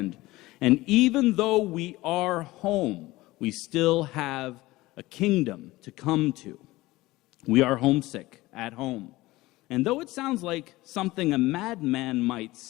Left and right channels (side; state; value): right; quieter; 19.1 dB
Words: And even though we are home, we still have a kingdom to come to. We are homesick at home. And though it sounds like something a madman might